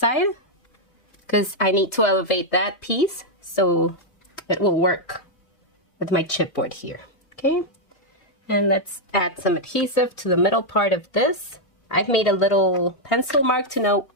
because I need to elevate that piece so it will work with my chipboard here. Okay, and let's add some adhesive to the middle part of this. I've made a little pencil mark to know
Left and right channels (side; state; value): right; late; 3.2 ms